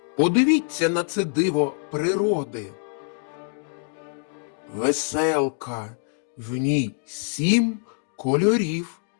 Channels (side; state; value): right; silent; 61 dB below the other